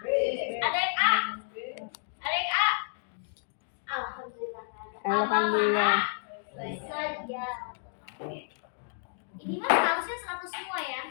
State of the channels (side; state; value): right; silent; digital silence